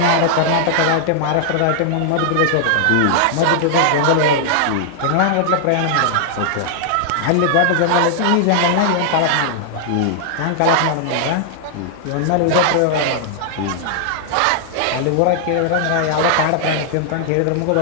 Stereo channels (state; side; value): different; both; correlation -0.01